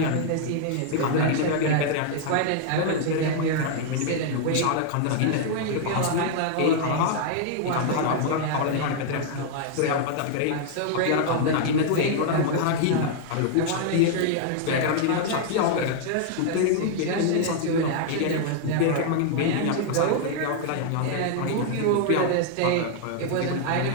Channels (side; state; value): both; different; correlation -0.01